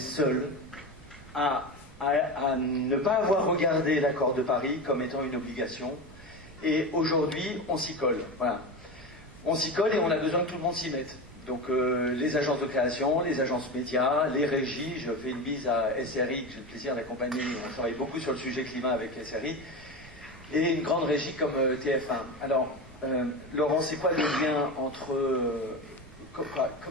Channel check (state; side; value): noise; right; rumble, 22 dB below the sound